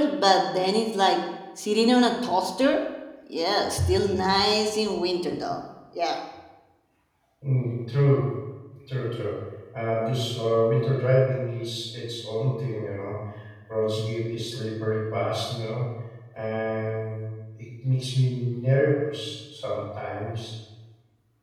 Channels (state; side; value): identical; both; correlation 1.00